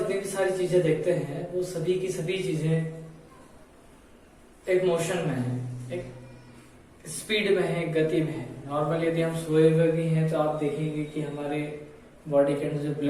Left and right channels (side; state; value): both; identical; correlation 1.00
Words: भी सारी चीजें देखते हैं वो सभी की सभी चीजें एक मोशन में है, एक स्पीड में है, एक गति में है। नॉर्मल यदि हम सोए हुए भी हैं तो आप देखेंगे कि हमारे बॉडी के अंदर जो